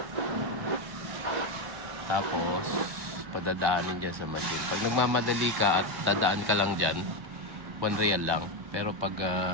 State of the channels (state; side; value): late; left; 1.1 ms